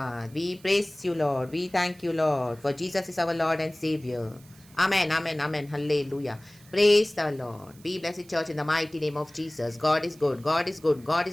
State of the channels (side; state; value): right; noise; hiss, 26 dB below the sound